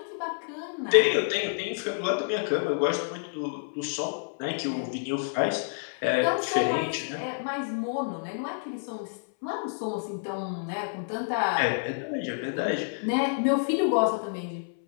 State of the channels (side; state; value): right; silent; 59 dB below the other